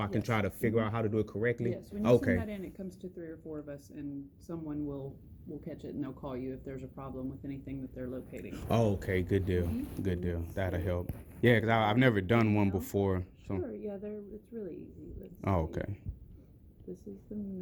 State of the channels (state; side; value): identical; both; correlation 1.00